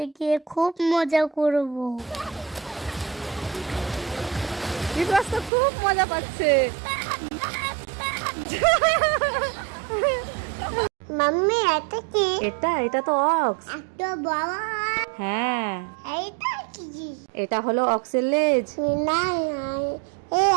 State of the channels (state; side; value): drops out; left; at 5.5 s